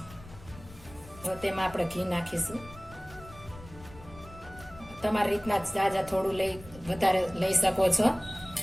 હવે તેમાં આપણે ઘી નાખીશું. તમારી રીતના જાજા થોડું વધારે લઈ શકો છો.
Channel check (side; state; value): left; noise; rumble, 19 dB below the sound